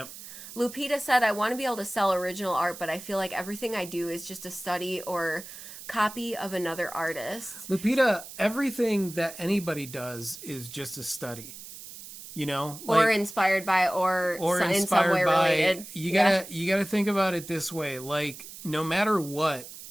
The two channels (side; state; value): right; noise; hiss, 14 dB below the sound